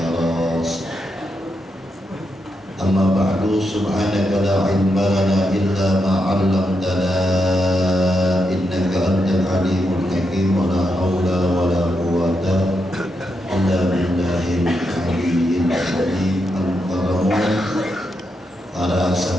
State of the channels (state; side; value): normal; both; correlation 0.83